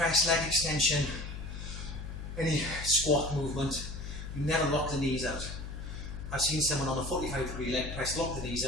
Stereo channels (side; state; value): left; noise; hum, 8 dB below the sound